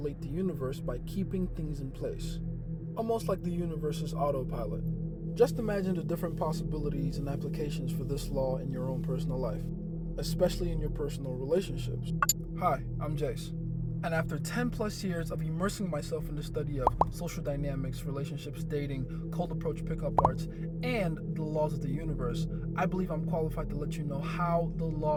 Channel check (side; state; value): both; identical; correlation 1.00